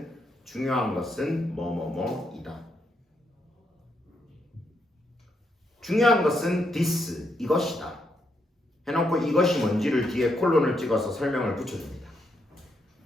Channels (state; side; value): normal; both; correlation 0.79